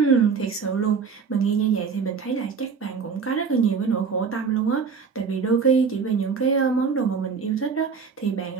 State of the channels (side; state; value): left; quieter; 5.6 dB